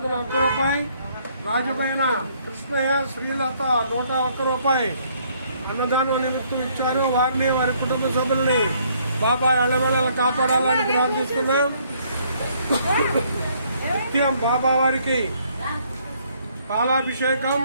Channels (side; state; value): both; inverted; correlation -0.66